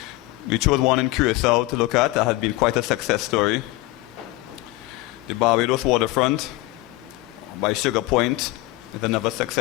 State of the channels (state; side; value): quieter; right; 19.9 dB